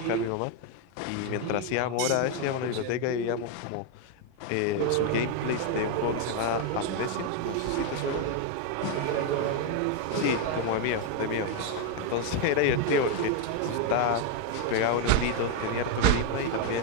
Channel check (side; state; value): both; different; correlation 0.01